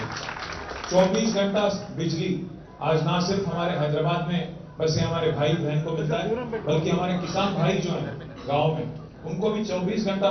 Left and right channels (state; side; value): identical; both; correlation 1.00